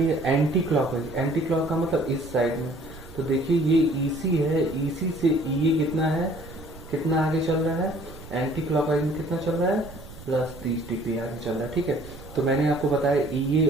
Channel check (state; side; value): noise; right; rumble, 17 dB below the sound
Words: है। एंटी क्लॉक है, एंटी क्लॉक का मतलब इस साइड में। तो देखिए ये ईसी है, ईसी से ये कितना है, कितना आगे चल रहा है, एंटी क्लॉकवाइज में कितना चल रहा है, +30 डिग्री आगे चल रहा है। ठीक है, तो मैंने आपको बताया ईए